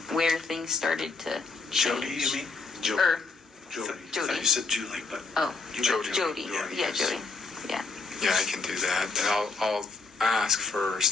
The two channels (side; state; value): right; quieter; 4.2 dB